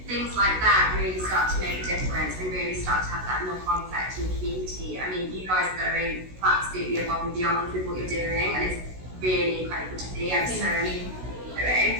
things like that really start to make a difference and really start to have that knock-on effect in the community. I mean, you guys are going absolutely above and beyond with what you're doing, and it's really incredible to see. I'm so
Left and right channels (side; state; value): left; late; 16 ms